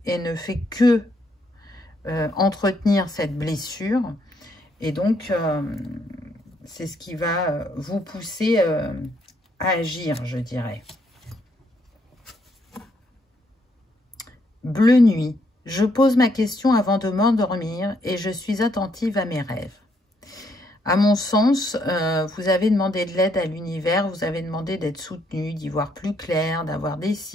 et ne fait que entretenir cette blessure. Et donc, c'est ce qui va vous pousser à agir, je dirais. Bleu nuit. Je pose ma question avant de m'endormir et je suis attentive à mes rêves. À mon sens, vous avez demandé de l'aide à l'univers, vous avez demandé d'être soutenu, d'y voir plus clair, d'avoir des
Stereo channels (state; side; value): normal; both; correlation 0.73